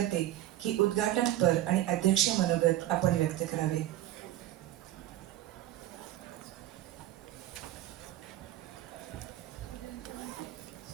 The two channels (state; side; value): quieter; left; 13.9 dB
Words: की उद्घाटनपर आणि अध्यक्ष मनोगत आपण व्यक्त करावे.